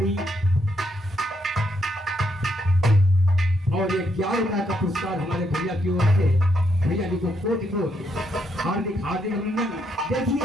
और ये 11,000 का पुरस्कार हमारे भैया की ओर से, भैया जी को कोटि कोटि हार्दिक हार्दिक अभिनंदन।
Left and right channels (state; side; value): normal; both; correlation 0.77